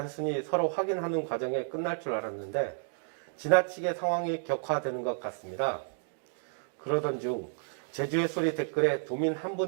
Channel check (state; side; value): silent; left; digital silence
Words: 서로 확인하는 과정에 끝날 줄 알았는데 지나치게 상황이 격화되는 것 같습니다. 그러던 중 제주의 소리 댓글에 도민 한